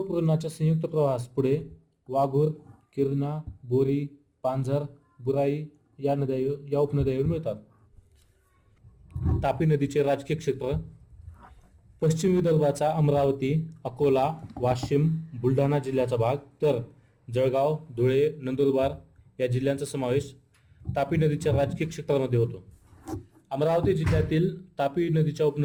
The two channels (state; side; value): identical; both; correlation 1.00